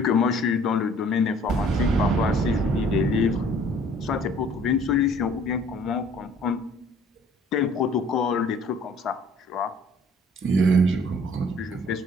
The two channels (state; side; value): normal; both; correlation 0.55